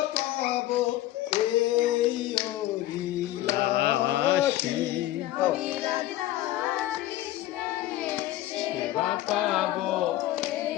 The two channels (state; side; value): quieter; right; 14.8 dB